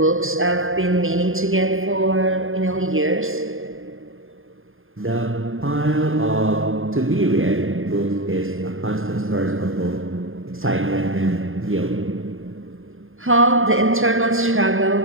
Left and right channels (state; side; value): late; left; 0.59 ms